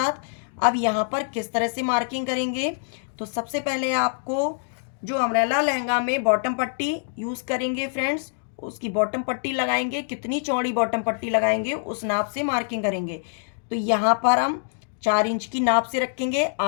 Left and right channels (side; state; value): right; silent; digital silence